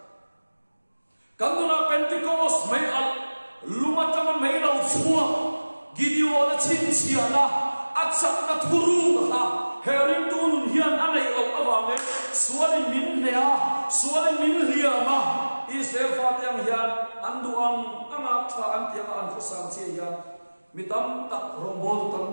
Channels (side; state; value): both; inverted; correlation -1.00